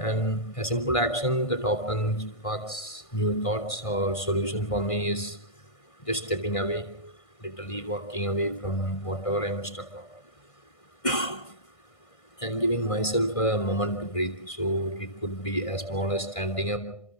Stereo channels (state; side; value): late; right; 1.5 ms